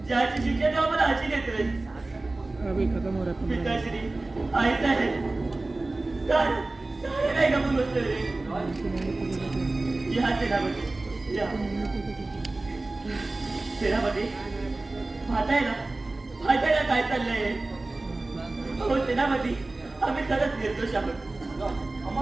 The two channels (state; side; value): quieter; left; 3.1 dB